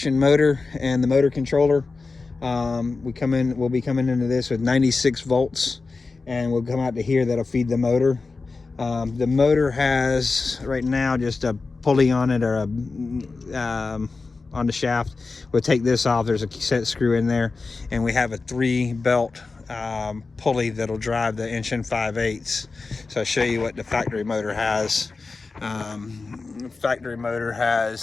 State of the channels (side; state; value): right; quieter; 4.0 dB